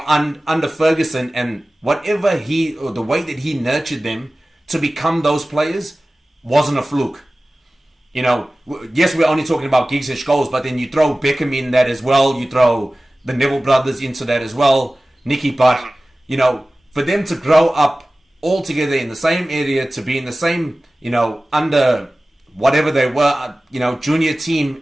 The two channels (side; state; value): both; normal; correlation 0.97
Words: under Ferguson and whatever or the way that he nurtured them to become those players wasn't a fluke. Yes, we're only talking about Giggs and Scholes, but then you throw Beckham in that as well. You throw the Neville brothers into that as well. Nicky Butt. For them to grow up all together in the same area, to be in the same, under whatever they were, junior team,